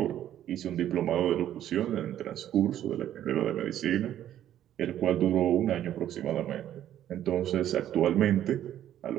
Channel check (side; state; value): left; quieter; 11.5 dB